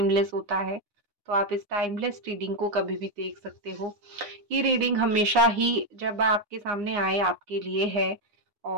होता है, तो आप इस टाइमलेस रीडिंग को कभी भी देख सकते हो। ये रीडिंग हमेशा ही जब आपके सामने आए आपके लिए है।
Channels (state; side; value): late; left; 9.7 ms